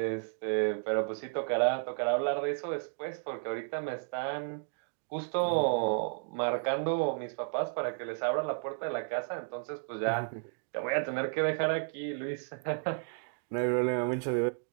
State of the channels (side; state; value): left; silent; digital silence